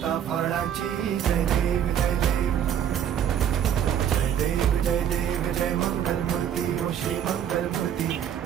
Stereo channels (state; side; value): quieter; left; 9.5 dB